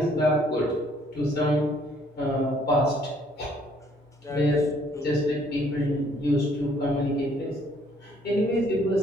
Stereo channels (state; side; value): normal; both; correlation 0.63